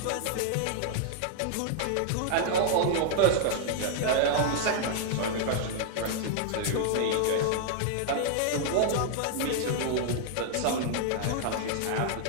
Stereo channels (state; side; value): different; both; correlation -0.01